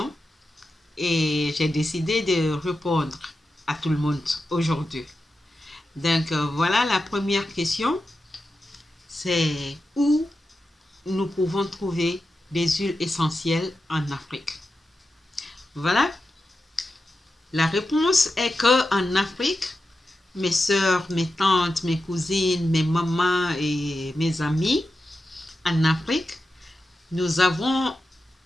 et j'ai décidé de répondre à tout le monde aujourd'hui. Donc voilà la première question, c'est où nous pouvons trouver des huiles essentielles en Afrique. Voilà, la réponse est que en Afrique, mes soeurs, mes tantes, mes cousines, mes mamans et mes amis, en Afrique, nous avons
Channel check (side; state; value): both; normal; correlation 0.90